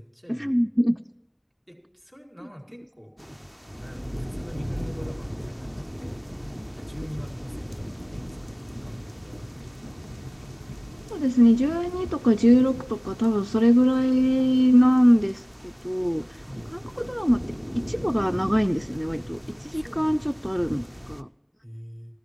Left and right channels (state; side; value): identical; both; correlation 1.00